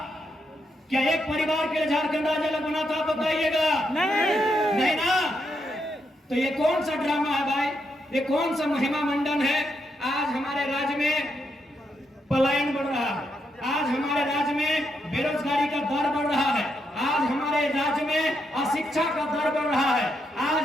क्या एक परिवार के लिए झारखंड राज्य अलग बना था? बताइएगा। नहीं ना। तो ये कौन सा ड्रामा है भाई? ये कौन सा महिमा मंडन है? आज हमारे राज्य में पलायन बढ़ रहा है, आज हमारे राज्य में बेरोजगारी का दर बढ़ रहा है, आज हमारे राज्य में अशिक्षा का दर बढ़ रहा है, आज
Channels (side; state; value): both; normal; correlation 0.80